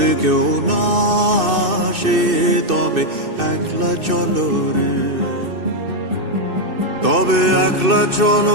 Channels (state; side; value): late; left; 2.6 ms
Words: কেউ না আসে তবে একলা চলো রে। তবে একলা